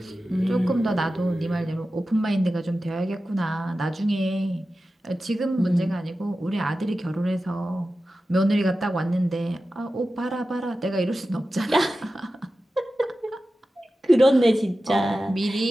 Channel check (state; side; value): normal; both; correlation 0.94